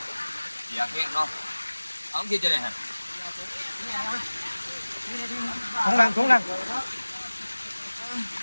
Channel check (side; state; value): both; inverted; correlation -1.00